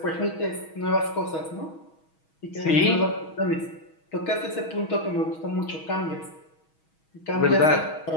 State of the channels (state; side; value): late; right; 6.3 ms